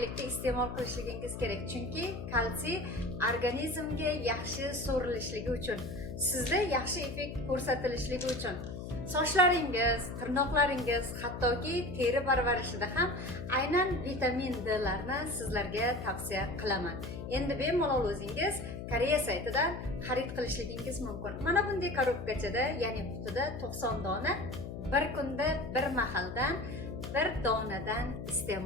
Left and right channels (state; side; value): noise; left; hum, 8 dB below the sound